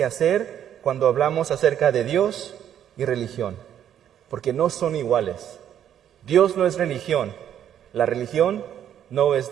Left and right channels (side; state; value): left; quieter; 10.0 dB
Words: hacer cuando hablamos acerca de Dios y religión, porque no son iguales. Dios no es religión, la religión no es